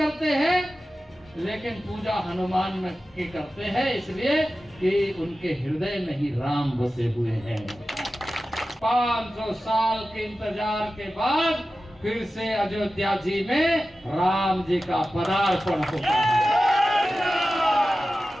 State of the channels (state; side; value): normal; both; correlation 0.94